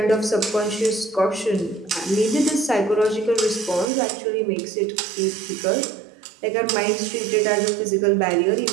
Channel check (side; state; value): left; drops out; at 3.9 s